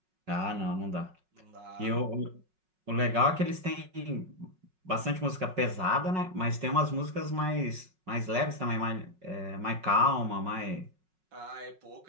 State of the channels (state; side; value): late; left; 5.4 ms